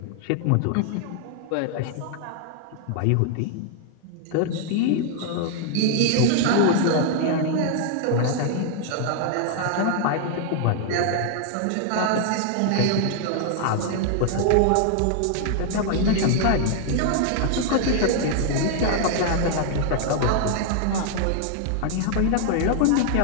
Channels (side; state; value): both; different; correlation 0.00